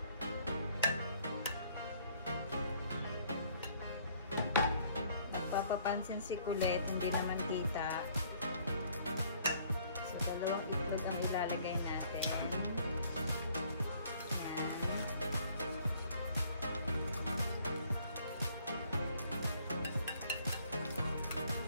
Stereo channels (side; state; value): both; inverted; correlation -0.61